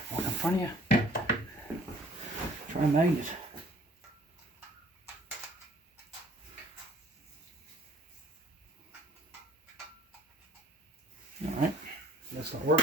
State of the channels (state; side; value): normal; both; correlation 0.54